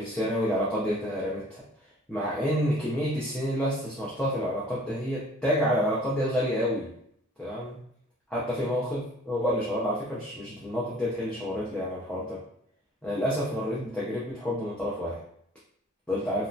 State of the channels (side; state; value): both; normal; correlation 0.51